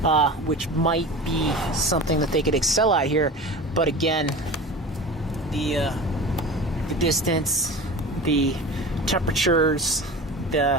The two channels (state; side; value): normal; both; correlation 0.34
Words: which might be something that they could excel at here. But again, the distance, the temperatures,